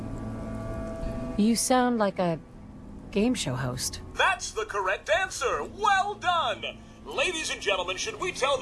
You sound like a game show host. That's the correct answer. Well done. Ladies and gentlemen, should we tell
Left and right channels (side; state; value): both; identical; correlation 1.00